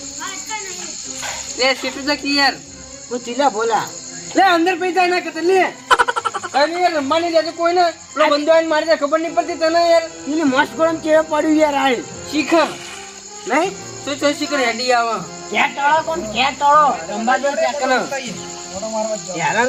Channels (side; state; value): both; identical; correlation 1.00